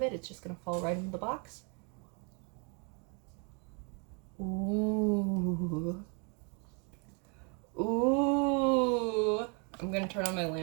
it. It's just gonna fall right into the box. Ooh. Ooh. I'm gonna turn on my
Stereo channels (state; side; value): quieter; left; 35.9 dB